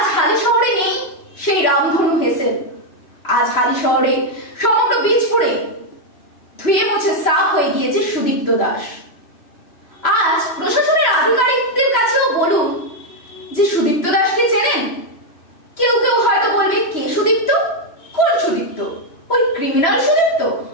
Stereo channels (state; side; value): late; right; 3.0 ms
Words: হালি শহরে নেই সেই রামধনু হেসেল। আজ হালি শহরে, সমগ্র বীজপুরে ধুয়ে মুছে সাফ হয়ে গিয়েছে সুদীপ্ত দাস। আজ প্রশাসনের আধিকারিকদের কাছেও বলুন যে সুদীপ্ত দাসকে চেনেন? কেউ কেউ হয়তো বলবে, কে সুদীপ্ত? কোন সুদীপ্ত? ওই ক্রিমিনাল সুদীপ্ত,